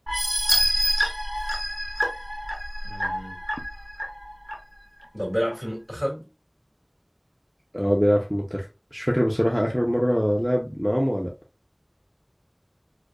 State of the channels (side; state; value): both; identical; correlation 1.00